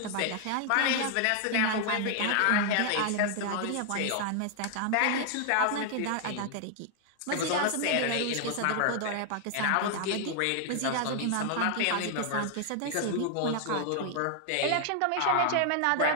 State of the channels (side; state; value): both; different; correlation 0.00